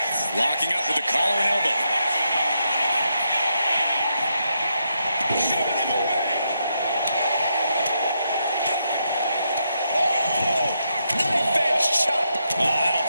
Locking up with the collar and elbow. Shoving him away. Oh! Knife edge chop. Oh, that'll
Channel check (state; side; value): inverted; both; correlation -0.81